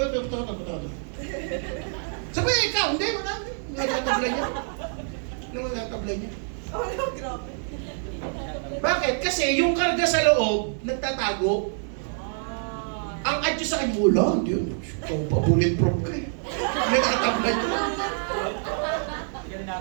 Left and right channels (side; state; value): left; silent; 61 dB below the other